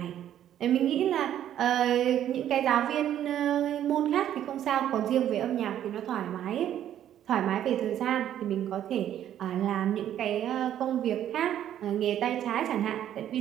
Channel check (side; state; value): left; quieter; 11.0 dB